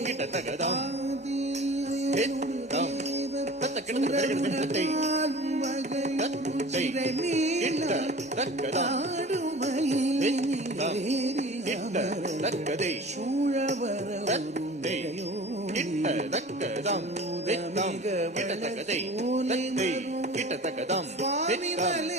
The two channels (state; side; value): normal; both; correlation 0.40